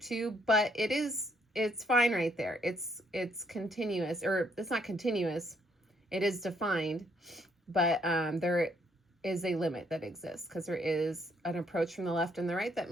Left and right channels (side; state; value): both; normal; correlation 0.70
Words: but it's fine right there. It's continuous, or it's not continuous. It is defined, but there is a limit that exists because there is an approach from the left and the right that